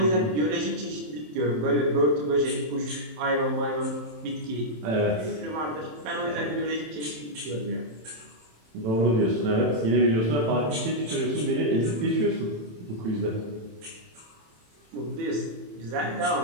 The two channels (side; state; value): left; late; 27 ms